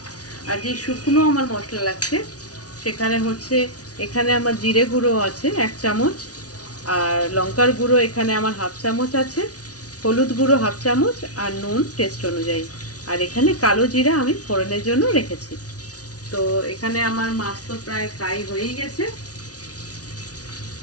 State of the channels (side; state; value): right; late; 0.68 ms